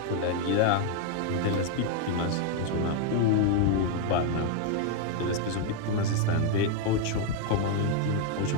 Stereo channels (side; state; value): both; different; correlation 0.01